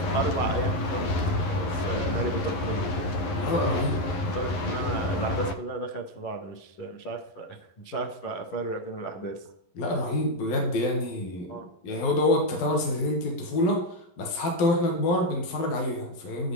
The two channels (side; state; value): right; late; 11 ms